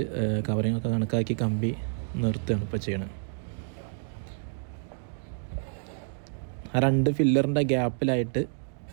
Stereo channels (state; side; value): silent; left; digital silence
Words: കവറിങ്ങൊക്കെ കണക്കാക്കി കമ്പി നിർത്തുകയാണ് ഇപ്പോൾ ചെയ്യണത്. ആ 2 ഫില്ലറിൻ്റെ ഗ്യാപ്പിലായിട്ട്